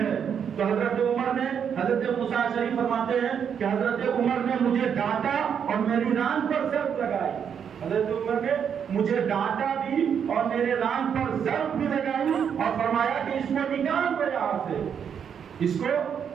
تو حضرت عمر نے، حضرت موسیٰ اشعری فرماتے ہیں کہ حضرت عمر نے مجھے ڈانٹا اور میری ران پر ضرب لگائی، حضرت عمر نے مجھے ڈانٹا بھی اور میرے ران پر ضرب بھی لگائی اور فرمایا کہ اس کو نکال دو یہاں سے، اس کو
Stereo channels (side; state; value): left; quieter; 7.7 dB